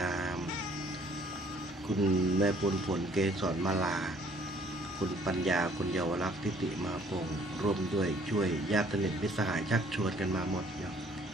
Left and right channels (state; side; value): normal; both; correlation 0.59